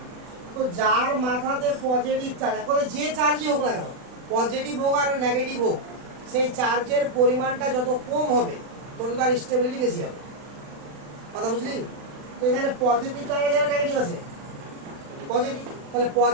তো যার মাথাতে পজিটিভ চার্জ, এখন যে চার্জই হোক না কেন, পজিটিভ হোক আর নেগেটিভ হোক, সেই চার্জের পরিমাণটা যত কম হবে তত তার স্টেবিলিটি বেশি হবে, কথা বুঝলি? তো এখানে পজিটিভ চার্জ আছে, নেগেটিভ আছে, পজিটিভ। তাহলে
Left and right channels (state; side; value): late; left; 40 ms